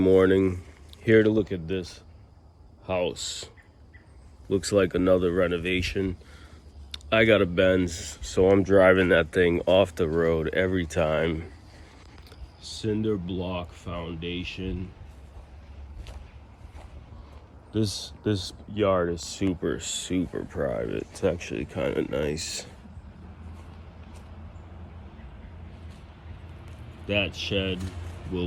here to look at this house. Looks like another renovation. I got a Benz, so I'm driving that thing off the road every time. Cinder block foundation. This yard is super private. It's actually kind of nice. That shed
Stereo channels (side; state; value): both; identical; correlation 1.00